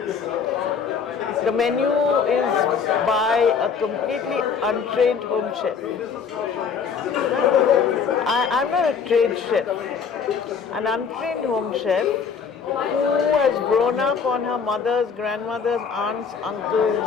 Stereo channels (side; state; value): right; quieter; 6.3 dB